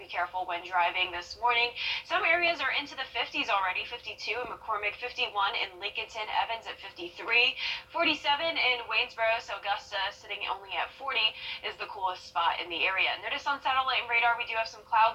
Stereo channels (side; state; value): both; identical; correlation 1.00